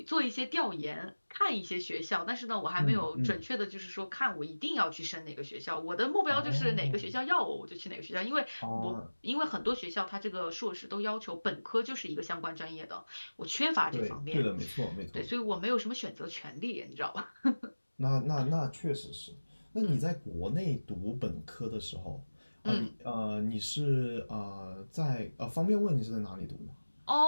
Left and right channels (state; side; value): inverted; both; correlation -1.00